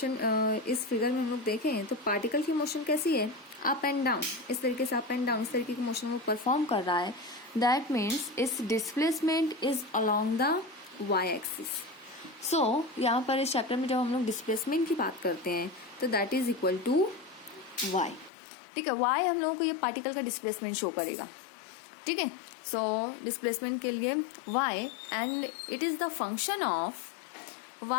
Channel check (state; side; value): drops out; right; at 18.3 s